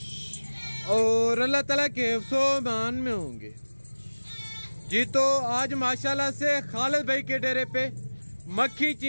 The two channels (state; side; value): inverted; both; correlation -1.00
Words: और अल्लाह ताला के हिफ्ज़ो-ओ-मान में होंगे जी। तो आज माशाल्लाह से खालिद भाई के डेरे पे मक्खी